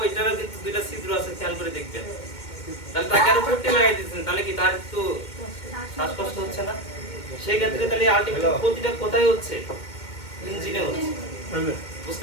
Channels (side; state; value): right; late; 2.2 ms